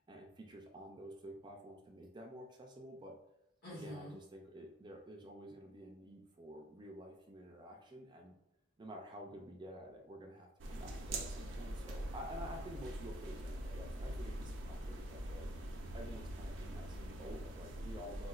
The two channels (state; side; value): normal; both; correlation 0.69